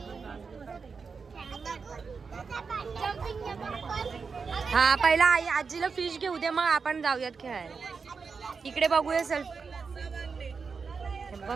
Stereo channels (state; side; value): quieter; left; 5.2 dB